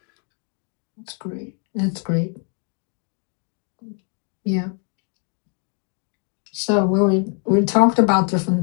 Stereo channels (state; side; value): quieter; right; 39.6 dB